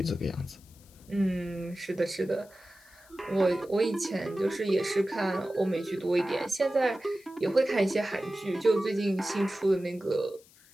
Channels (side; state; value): left; noise; hiss, 26 dB below the sound